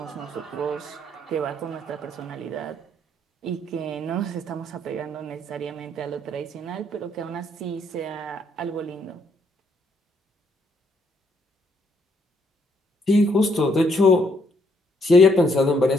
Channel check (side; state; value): both; normal; correlation 0.71